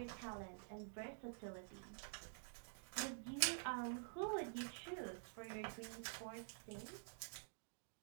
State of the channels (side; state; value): left; silent; digital silence